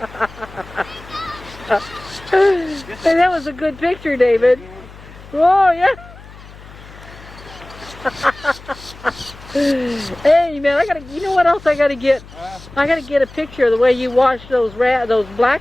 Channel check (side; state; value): left; noise; hum, 19 dB below the sound